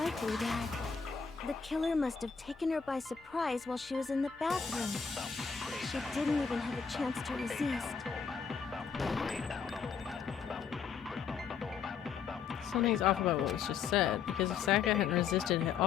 that the killer must have taken her by surprise while she was in the bathroom. She didn't even have a chance to resist. Something's off about what was just said, because if Sayaka hadn't resisted at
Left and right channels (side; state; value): right; quieter; 6.3 dB